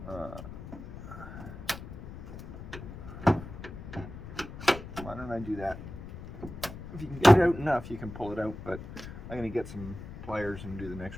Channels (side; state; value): left; noise; rumble, 11 dB below the sound